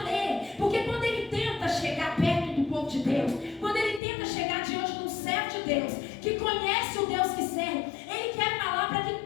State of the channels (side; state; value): right; drops out; at 4.0 s